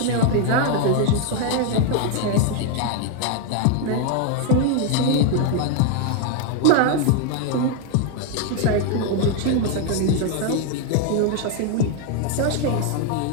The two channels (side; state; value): both; different; correlation 0.01